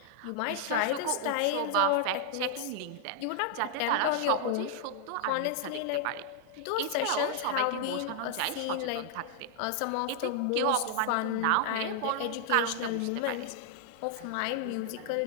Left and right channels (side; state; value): both; different; correlation 0.00